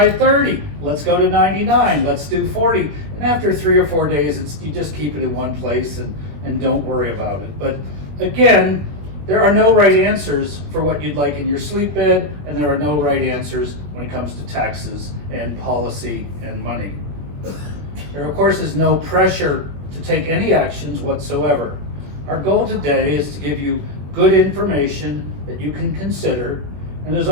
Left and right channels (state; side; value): late; left; 21 ms